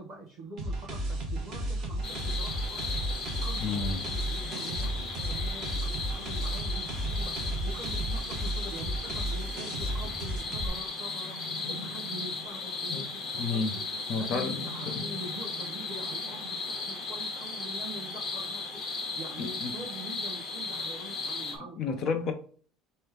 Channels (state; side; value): normal; both; correlation 0.55